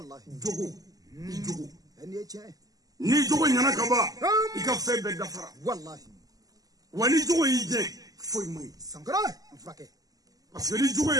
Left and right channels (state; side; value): late; left; 0.17 ms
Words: جوغو. ني جوغو. أني أجي. ni jogo nyana kaba ika fe be dafara wallahi wani jogo yije foi mai sangara mfake parce que ni jogo